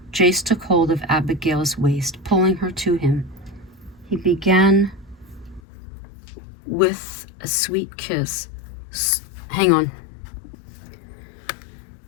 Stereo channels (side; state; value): right; drops out; at 5.6 s